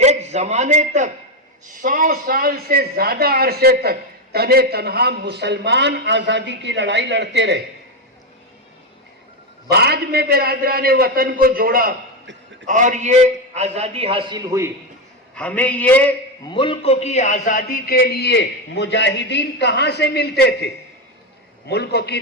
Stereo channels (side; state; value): both; normal; correlation 0.10